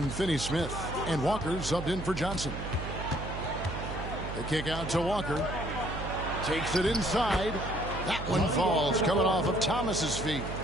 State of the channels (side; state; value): right; noise; hum, 7 dB below the sound